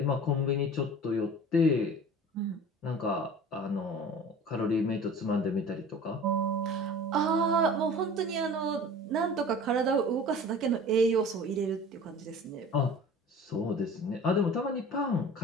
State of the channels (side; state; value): both; normal; correlation 0.41